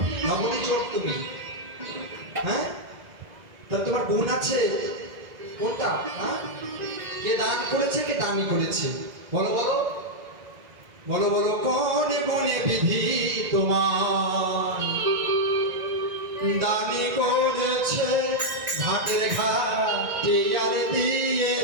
নবনী চোর তুমি। হ্যাঁ, তা তোমার গুণ আছে কোনটা? হ্যাঁ, কে দান করেছে, কে দানি করেছে? বলো বলো বলো বলো, কোনে বনে বিধি তোমার দানি করেছে, ঘাটের ঘাটে আর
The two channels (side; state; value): left; late; 2.0 ms